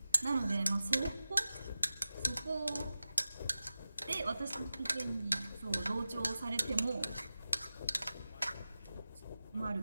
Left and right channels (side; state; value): both; inverted; correlation -0.95